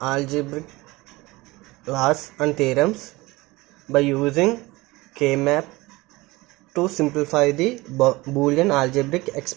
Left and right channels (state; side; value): quieter; left; 21.3 dB